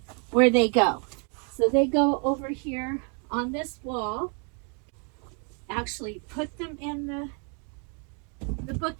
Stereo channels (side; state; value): left; quieter; 38.0 dB